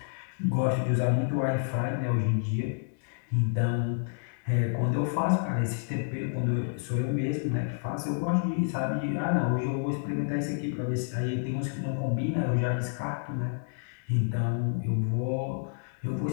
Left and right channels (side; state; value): right; silent; 58 dB below the other